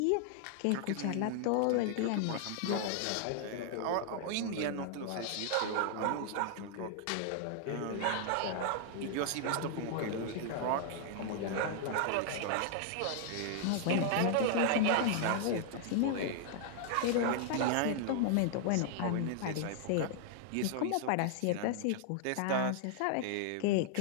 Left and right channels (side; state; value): both; different; correlation 0.00